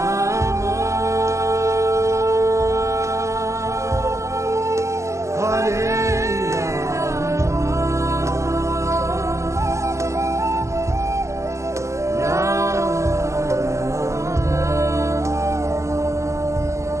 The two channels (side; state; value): left; late; 0.14 ms